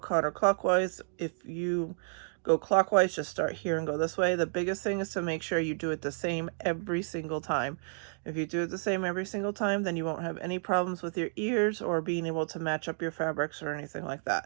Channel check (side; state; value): left; silent; digital silence